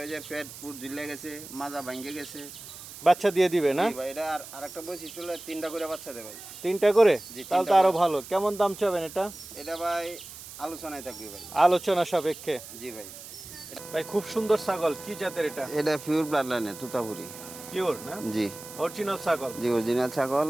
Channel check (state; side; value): noise; right; hiss, 14 dB below the sound